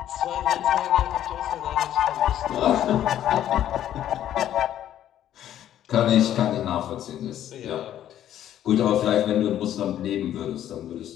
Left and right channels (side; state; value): right; quieter; 11.4 dB